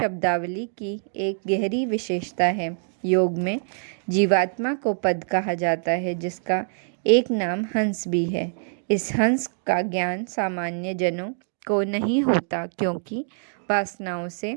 की एक गहरी विशेषता है। योग में जीवात्मा को पद कहा जाता है, जिसका एक नाम हंस भी है। इस हंस का ज्ञान सामान्य जनों को नहीं होता, क्योंकि वासनाओं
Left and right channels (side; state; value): left; silent; digital silence